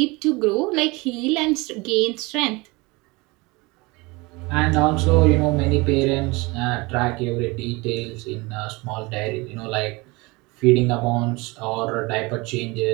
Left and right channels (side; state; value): left; quieter; 24.7 dB